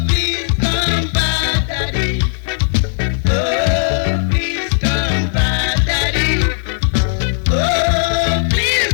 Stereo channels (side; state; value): right; silent; 65 dB below the other